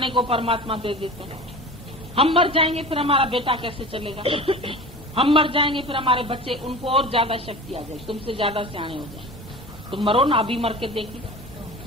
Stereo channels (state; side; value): normal; both; correlation 0.35